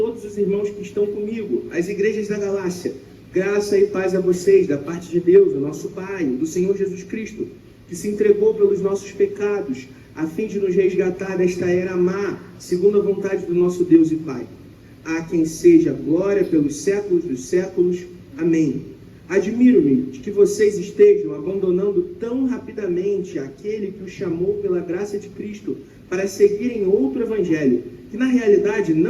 os irmãos que estão comigo, as igrejas da Galácia, graça e paz a vocês, da parte de Deus, o nosso Pai, do Senhor Jesus Cristo, que se entregou pelos nossos pecados, a fim de nos resgatar desta era má, segundo a vontade do nosso Deus e Pai. A quem seja glória pelos séculos dos séculos. Amém. Admiro-me de que vocês estejam abandonando tão rapidamente aquele que os chamou pela graça de Cristo para seguirem outro evangelho, que na realidade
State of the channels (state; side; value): identical; both; correlation 1.00